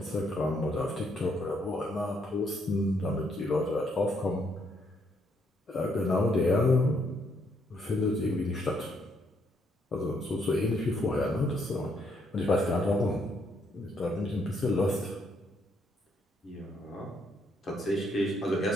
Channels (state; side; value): normal; both; correlation 0.72